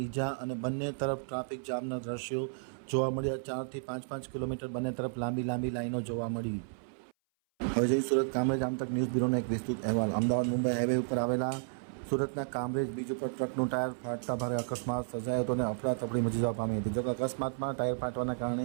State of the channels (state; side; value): silent; left; 56 dB below the other